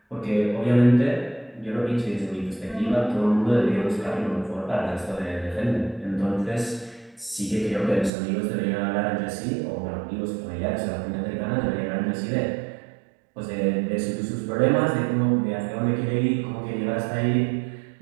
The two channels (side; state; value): left; drops out; at 8.1 s